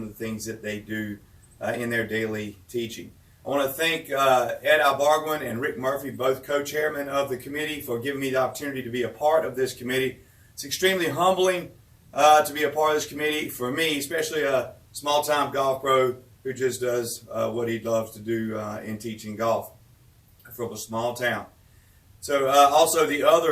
the things that they do in their daily teaching. I want to thank Ed Albarguin and Rick Murphy, both co-chairmen of the committee, for giving me the opportunity to be a part of this committee. It's extremely humbling to be a part of this committee for me, especially a small-time golf pro who just does what he loves to do in teaching golf from a small town. So also the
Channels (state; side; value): identical; both; correlation 1.00